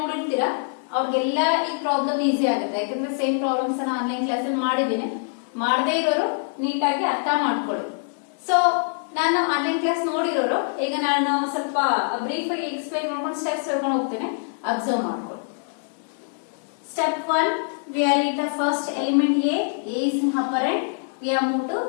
ನೋಡಿರ್ತೀರಾ ಅವ್ರಿಗೆಲ್ಲ ಈ problem easy ಆಗುತ್ತೆ. ಯಾಕಂದ್ರೆ same problems ಅನ್ನ online class ಅಲ್ಲಿ ಮಾಡಿದ್ದೀನಿ. ಮಾಡದೇ ಇರೋರು ನೀಟಾಗಿ ಅರ್ಥ ಮಾಡ್ಕೊಳ್ಳಿ. ಸೊ ನಾನು ಆನ್ಲೈನ್ ಕ್ಲಾಸ್ ನೋಡಿರೋರು ಈಗ ನಾನು ಸ್ವಲ್ಪ ಬ್ರೀಫ್ ಆಗಿ ಎಕ್ಸ್ಪ್ಲೈನ್ ಮಾಡ್ಕೊಂಡು ಸ್ಟೆಪ್ಸ್ ಹೇಳ್ಕೊಂಡು ಹೋಗ್ತೇನೆ, ಅಬ್ಸರ್ವ್ ಮಾಡ್ಕೊಳ್ಳಿ. Step 1, we are in the first element A is an operand. We are moved to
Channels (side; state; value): right; silent; digital silence